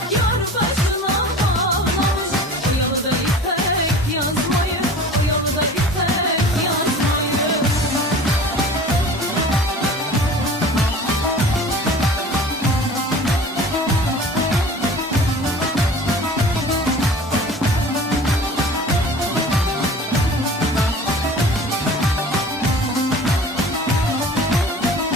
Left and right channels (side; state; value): both; normal; correlation 0.42